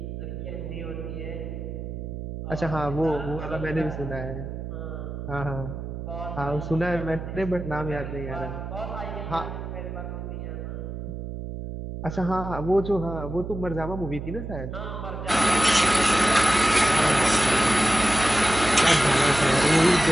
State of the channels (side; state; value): right; noise; hum, 7 dB below the sound